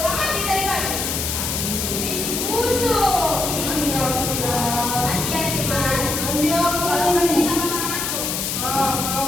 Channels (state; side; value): noise; left; hiss, 2 dB below the sound